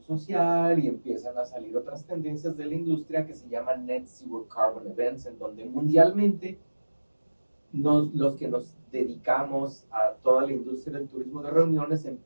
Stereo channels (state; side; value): inverted; both; correlation -1.00